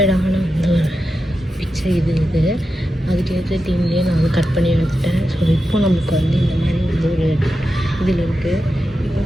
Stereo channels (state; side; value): normal; both; correlation 0.89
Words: வந்து ஒரு பிக்சர் இது அதுக்கேற்ற டீம்லேயே நான் வந்து கட் பண்ணி எடுத்துட்டேன். ஸோ இப்போ நமக்கு வந்து இந்த மாதிரி வந்து ஒரு இதில் இருக்குது. இப்போ